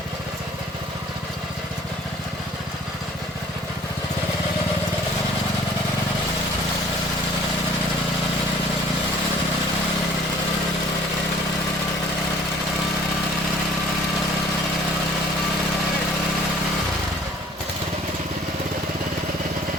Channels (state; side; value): normal; both; correlation 0.53